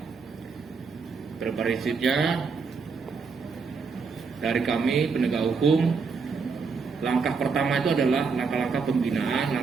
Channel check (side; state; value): left; quieter; 5.1 dB